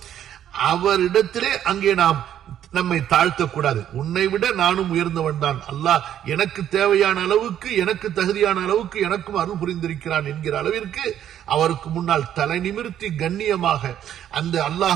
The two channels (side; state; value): left; quieter; 10.6 dB